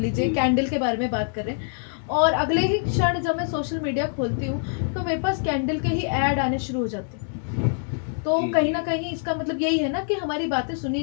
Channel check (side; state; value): right; silent; digital silence